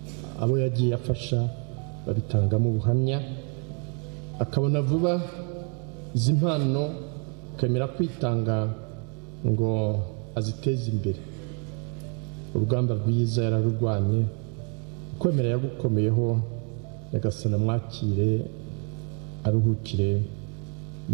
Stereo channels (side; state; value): left; quieter; 38.1 dB